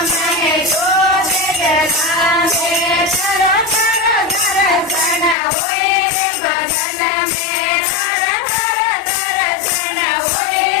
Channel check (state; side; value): drops out; right; at 5.4 s